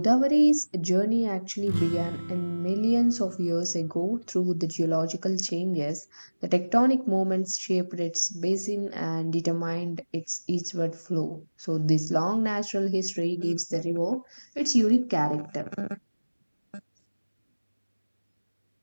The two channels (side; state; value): both; inverted; correlation -1.00